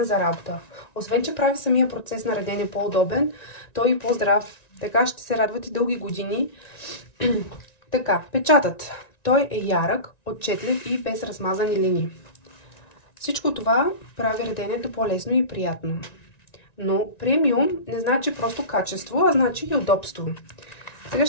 за работа. Освен, че прави самия процес на редене по-удобен, той и по-здрав. Така ще се радват и дълги години. Така, печатът. Той е ярък, отчетлив и без размазани линии. Всичко това прави реденето по-лесно и приятно. Но премиум не значи просто качество, а значи и удобство. Сега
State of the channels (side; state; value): right; late; 1.9 ms